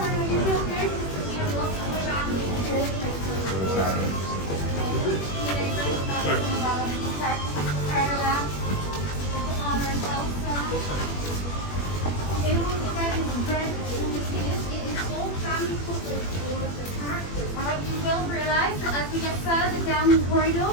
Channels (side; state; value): right; late; 21 ms